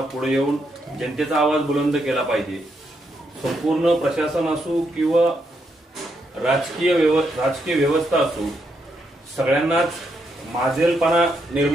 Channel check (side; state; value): both; normal; correlation 0.79